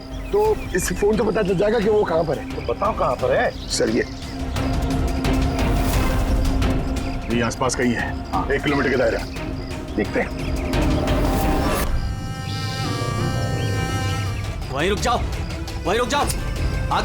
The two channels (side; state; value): both; identical; correlation 1.00